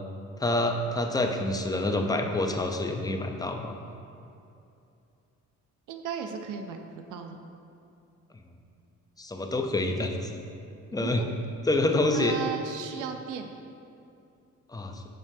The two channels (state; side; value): normal; both; correlation 0.48